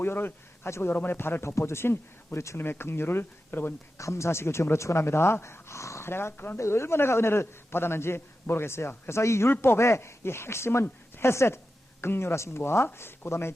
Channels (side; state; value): both; normal; correlation 0.92